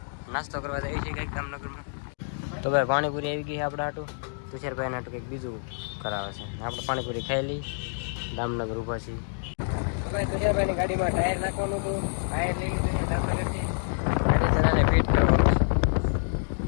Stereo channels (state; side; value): silent; right; digital silence